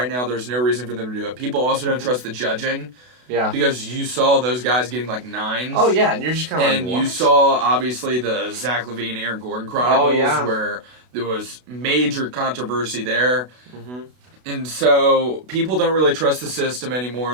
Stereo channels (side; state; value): left; late; 32 ms